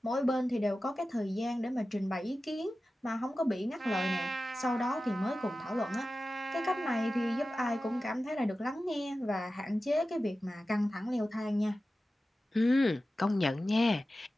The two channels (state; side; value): normal; both; correlation 0.94